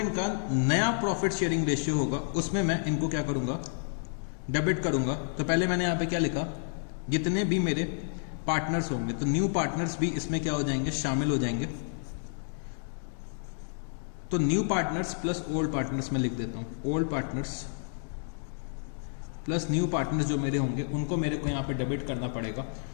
नया प्रॉफिट शेयरिंग रेशियो होगा उसमें मैं इनको क्या करूंगा, डेबिट करूंगा। तो पहले मैंने यहां पे क्या लिखा, जितने भी मेरे पार्टनर्स होंगे, तो न्यू पार्टनर्स भी इसमें क्या हो जाएंगे, शामिल हो जाएंगे। तो new partners plus old partners में लिख देता हूं, old partners plus new partners जो मेरे होंगे उनको मेरे को यहां पे डेबिट करना पड़ेगा।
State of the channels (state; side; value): silent; right; digital silence